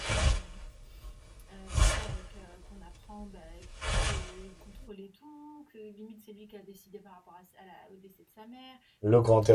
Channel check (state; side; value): identical; both; correlation 1.00